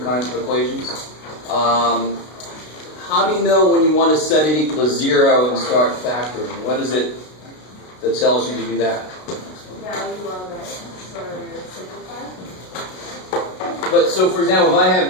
kinds of equations. How do you know when you want to set it equal to 0 and start factoring? What is it that tells you to do that? Value of it for simplified. But so, for example, if I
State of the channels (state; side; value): late; right; 33 ms